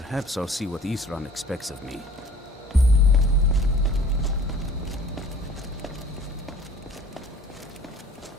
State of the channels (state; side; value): normal; both; correlation 0.50